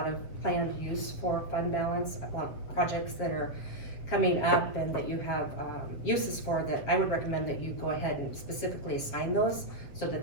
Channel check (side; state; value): right; late; 7.9 ms